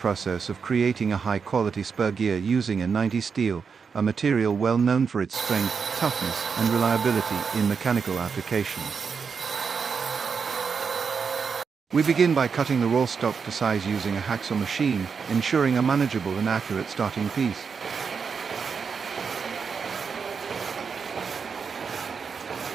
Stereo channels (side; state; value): left; quieter; 5.8 dB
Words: of creating a high-quality spur gear using a 90 steel, a material well known for its strength, toughness, and reliability in mechanical applications. We begin by cutting the raw stock to size using a hacksaw machine, ensuring a manageable and accurate starting piece.